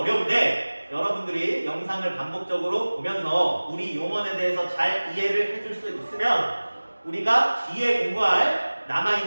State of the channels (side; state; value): both; inverted; correlation -1.00